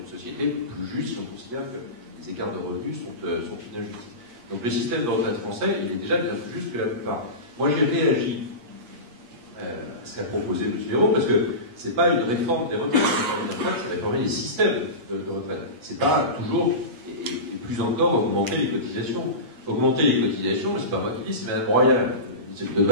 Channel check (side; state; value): left; late; 8.5 ms